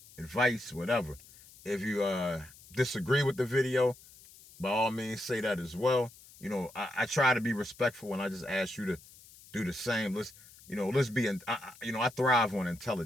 advice, whatever. If you disagree with the video, by all means, say that as well. I try to be respectful, and I just ask you to do the same. Let's be, I thrive on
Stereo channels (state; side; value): noise; left; hiss, 22 dB below the sound